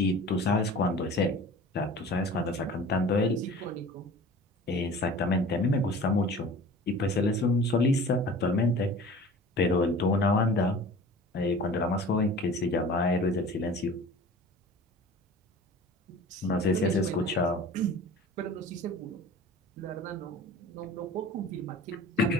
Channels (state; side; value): normal; both; correlation 0.42